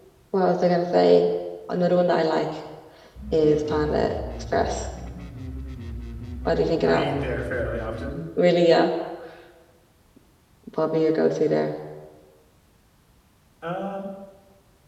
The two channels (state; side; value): identical; both; correlation 1.00